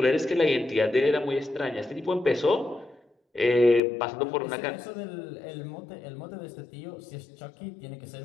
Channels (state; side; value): drops out; right; at 3.8 s